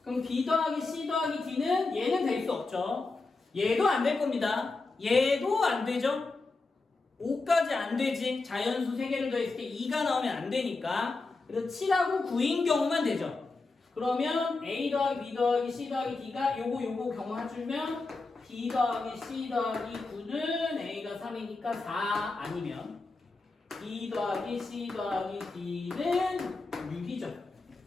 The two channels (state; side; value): quieter; right; 3.6 dB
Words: 그럼 B 더하기 C 더하기 D는 얘는 될 수 없죠. 얘도 안 될 겁니다. 얘도 안 되죠. 5까지 안 되지. 자연수 3개를 더했을 때 2가 나오면 안 되니까. 그래서 7하고 9인 경우만 되죠. 그러면 A 더하기 B 더하기 C 더하기 D가 요거 경우 해주면 B 더하기 C 더하기 9는 A가 3이니까 4 아니면 B 더하기 C 더하기 D는 6이죠.